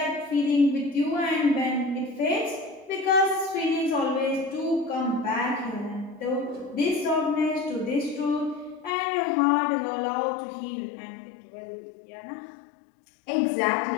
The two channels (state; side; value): drops out; right; at 8.9 s